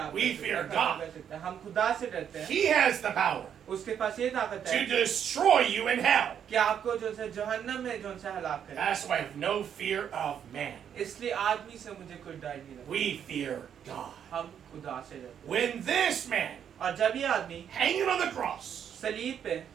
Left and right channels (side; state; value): left; quieter; 8.7 dB